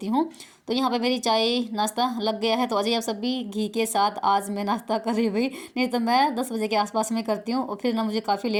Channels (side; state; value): both; identical; correlation 1.00